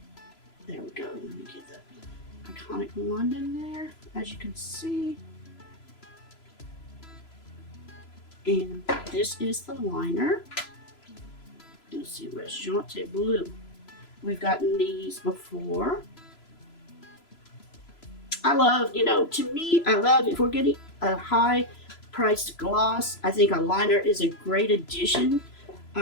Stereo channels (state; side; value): late; right; 3.0 ms